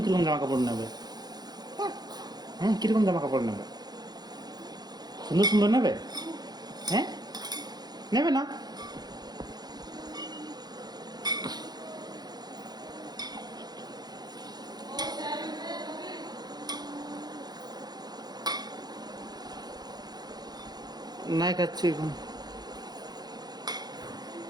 কিরকম জামা কাপড় নেবে? হ্যাঁ, কিরকম জামা কাপড় নেবে? সুন্দর সুন্দর নেবে? হ্যাঁ, নেবে না? নাই খাচ্ছি এখন।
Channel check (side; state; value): left; late; 0.19 ms